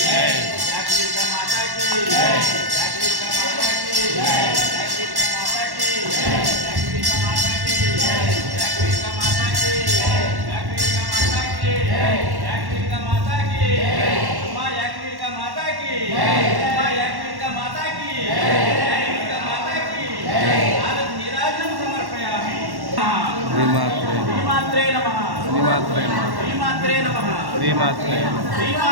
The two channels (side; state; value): left; late; 1.1 ms